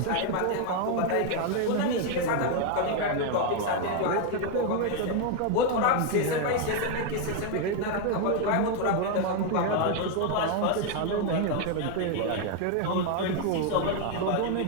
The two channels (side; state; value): both; different; correlation 0.01